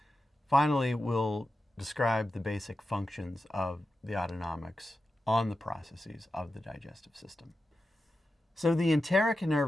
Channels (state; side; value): normal; both; correlation 0.91